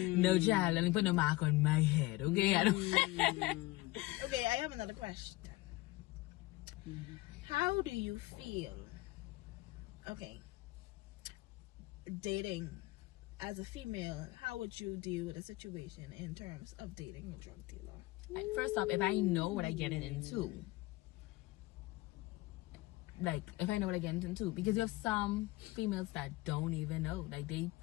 child. Let me put no mark on my head, okay? I don't. Okay, I have another question. How do you feel? Okay. Dating as a female, how would you deal with a situation in terms of dating a drug dealer? First off, if I know what I get into, like if I know what I get into, because you have some females that don't even know, like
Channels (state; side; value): quieter; right; 19.9 dB